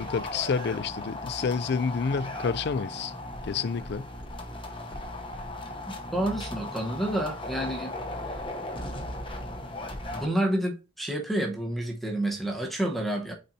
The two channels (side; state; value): both; normal; correlation 0.54